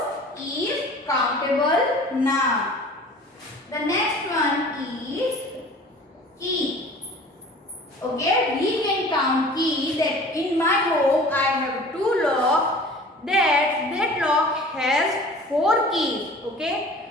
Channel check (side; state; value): both; normal; correlation 0.44